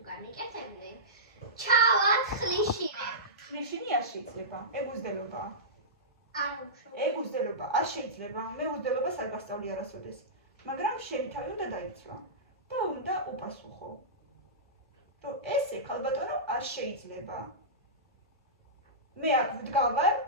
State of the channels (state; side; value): normal; both; correlation -0.17